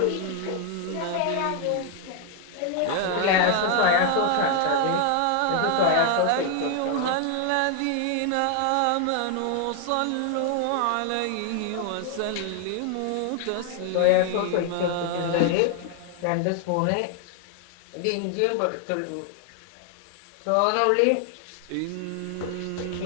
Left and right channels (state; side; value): different; both; correlation 0.00